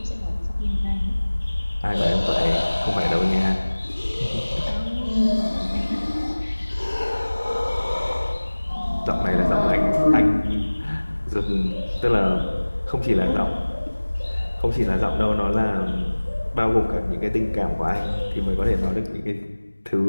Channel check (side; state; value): both; inverted; correlation -1.00